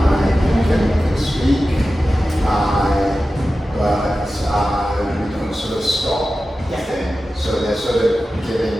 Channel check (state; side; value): normal; both; correlation 0.94